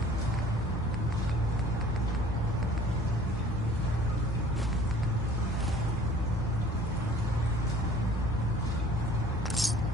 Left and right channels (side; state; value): both; normal; correlation 0.51